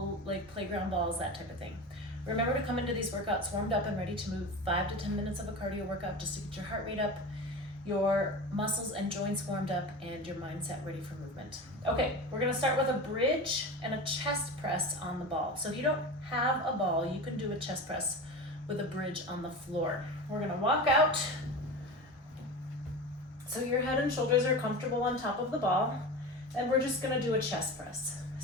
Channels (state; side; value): normal; both; correlation 0.29